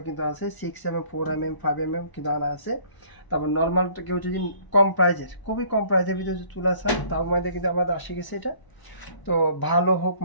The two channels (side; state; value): right; late; 1.0 ms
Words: কিন্তু আছে 6mm, 4mm, 5mm কিন্তু আনা আছে। তারপর নর্মাল কেউ যদি খুবই কম প্রাইজের ভিতরে যদি চুলা চান তার মধ্যে কিন্তু আমাদের আসে গেছে এটা। তো ভালো হোক